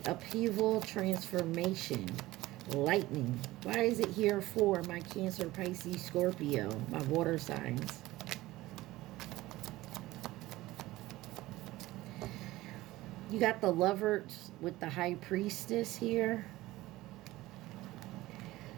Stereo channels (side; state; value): left; quieter; 17.8 dB